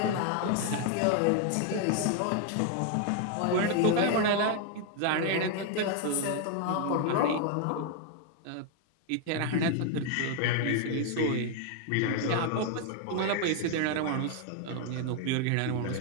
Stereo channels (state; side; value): different; both; correlation 0.01